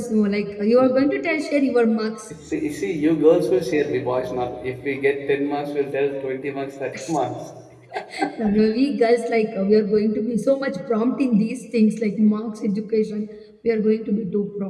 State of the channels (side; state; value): both; identical; correlation 1.00